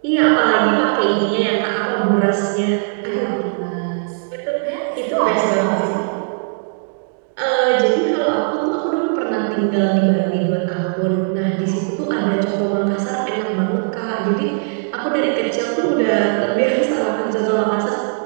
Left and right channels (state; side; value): silent; left; digital silence